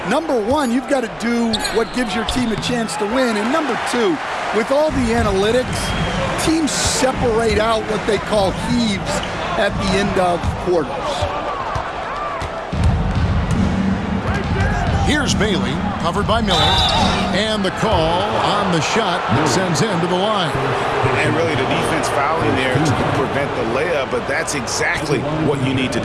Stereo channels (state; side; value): identical; both; correlation 1.00